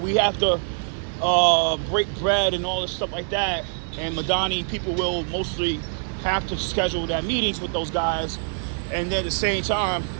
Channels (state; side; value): silent; left; 56 dB below the other